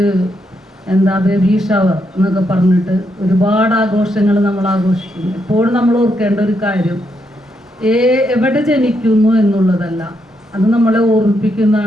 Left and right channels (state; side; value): normal; both; correlation 0.79